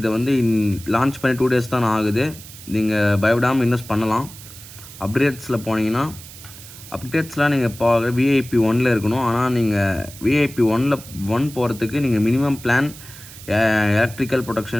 வந்து லான்ச் பண்ணி 2 days தான் ஆகுது. நீங்கள் பயப்படாமல் இன்வெஸ்ட் பண்ணலாம். அப்டேட்ஸில் போனீங்கன்னா அப்டேட்ஸ்லாம் நீங்கள் இப்போ VIP 1ல் இருக்கணும். ஆனால் நீங்கள் VIP 1 போகிறதுக்கு நீங்கள் மினிமம் பிளான் எலக்ட்ரிக்கல்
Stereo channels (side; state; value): right; noise; hiss, 17 dB below the sound